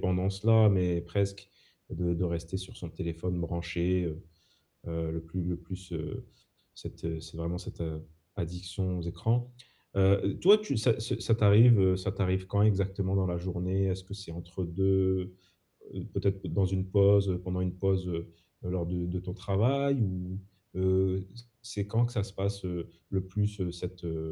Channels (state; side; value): identical; both; correlation 1.00